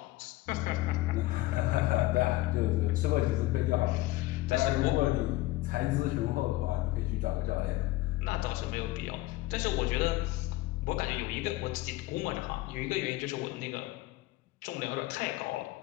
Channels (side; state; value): right; quieter; 18.3 dB